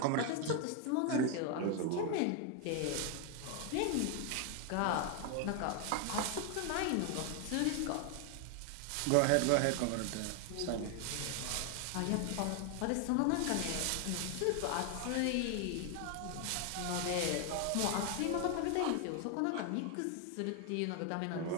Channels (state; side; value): different; both; correlation 0.01